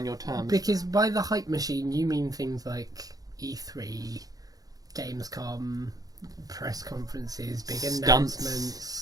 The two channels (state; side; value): late; left; 0.18 ms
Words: your terms. Because by the hype machine, you mean things like E3, Gamescom, press conferences, big